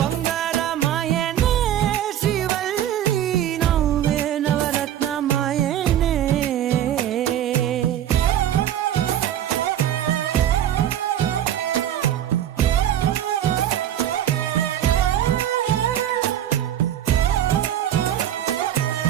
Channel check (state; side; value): quieter; left; 11.3 dB